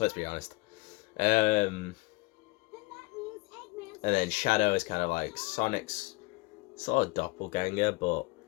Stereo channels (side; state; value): right; quieter; 23.8 dB